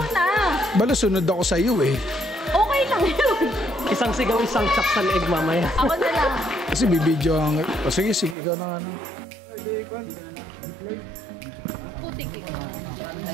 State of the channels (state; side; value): drops out; left; at 8.3 s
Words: na! Bala sunod ako sa iyo eh. Okay lang yun. Isang sigaw, isang chak sa leeg mamaya. Ako na lang. Kasi bibidyo ang... O sige, ikaw na ano. Putik eh.